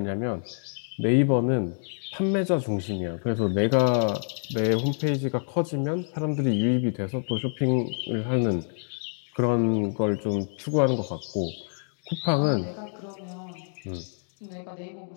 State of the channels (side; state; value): right; silent; digital silence